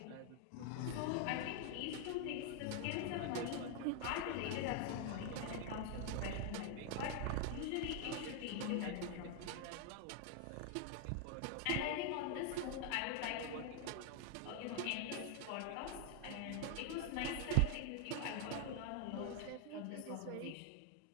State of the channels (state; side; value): different; both; correlation 0.00